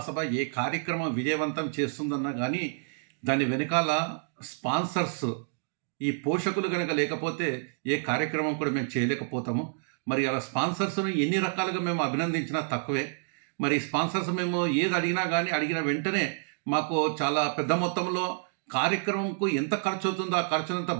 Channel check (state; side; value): silent; left; digital silence